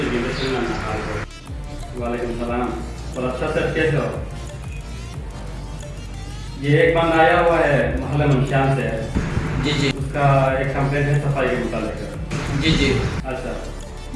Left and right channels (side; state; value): both; identical; correlation 1.00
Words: घंटे से ना हाल हो। वालेकुम सलाम और अच्छा सर कैसे हो? ये एक बंदा आया हुआ है मोहल्ला मंशान से। जी जी उसका एक कंप्लेंट है सफाई के मुताबिक। जी जी अच्छा